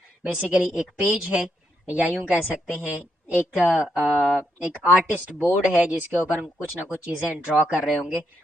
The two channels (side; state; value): both; normal; correlation 0.79